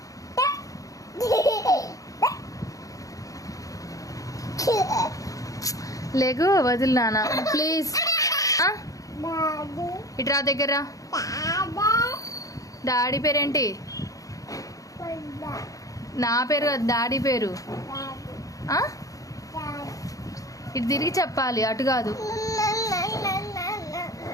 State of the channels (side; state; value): right; late; 0.17 ms